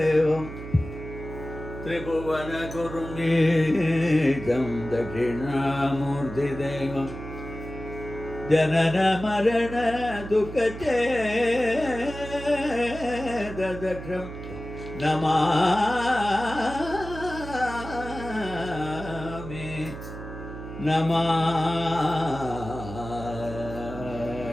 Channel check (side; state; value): right; noise; hum, 11 dB below the sound